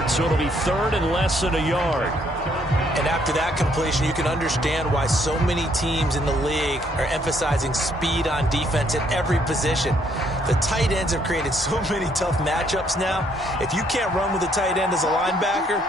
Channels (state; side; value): normal; both; correlation 0.68